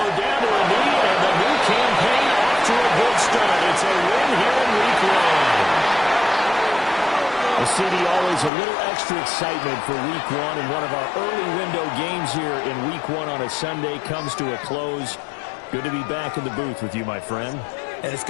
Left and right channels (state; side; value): drops out; right; at 8.5 s